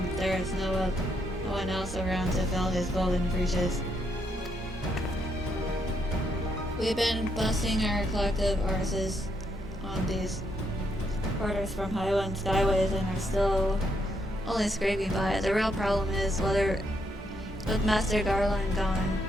there is no one else around to fill his golden breeches. We've been busting our collective arses on these orders from Highland Skyways and are still only scraping by. The real problem is whether, with Master Garland gone,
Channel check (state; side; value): normal; both; correlation 0.76